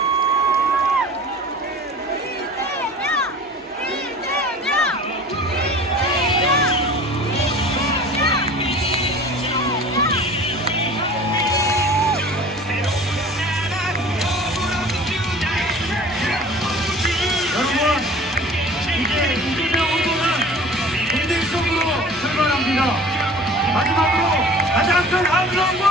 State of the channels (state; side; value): normal; both; correlation 0.43